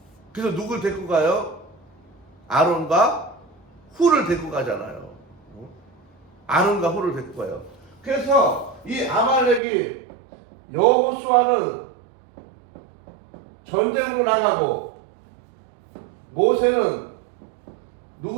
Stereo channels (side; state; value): left; drops out; at 9.6 s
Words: 그래서 누굴 데리고 가요? 아론과 훌을 데리고 가잖아요. 아론과 훌을 데리고 가요. 그래서 이 아말렉이 여호수아는 전쟁으로 나가고, 모세는